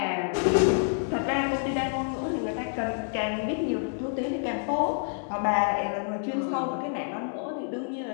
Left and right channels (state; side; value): silent; right; digital silence